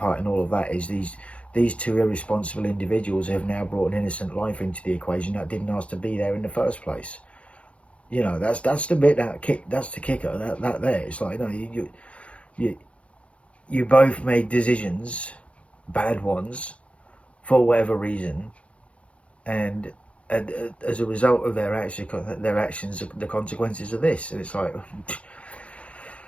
in all of that is these two irresponsible individuals have now brought an innocent life into the equation that didn't ask to be there in the first place. You know, that's the bit that's the kicker. That there, it's like, no, you both made decisions, bad ones, for whatever reason, and as a result of their actions, the consequences of this. And it's like,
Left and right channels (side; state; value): right; late; 0.062 ms